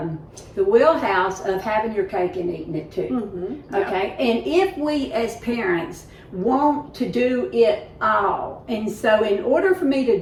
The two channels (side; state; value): both; identical; correlation 1.00